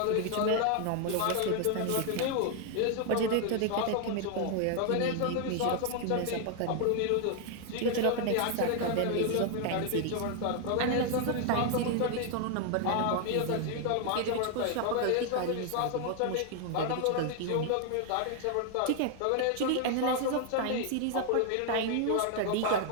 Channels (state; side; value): different; both; correlation 0.00